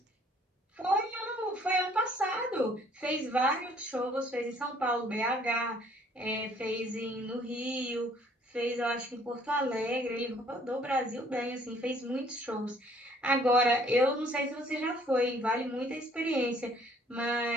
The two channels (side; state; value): both; normal; correlation 0.60